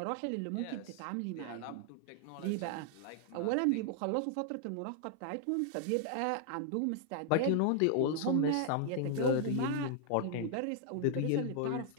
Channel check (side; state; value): both; different; correlation 0.00